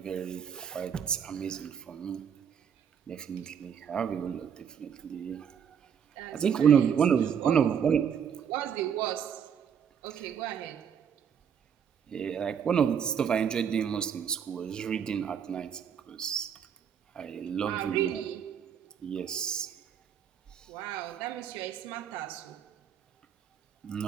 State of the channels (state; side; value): quieter; left; 7.9 dB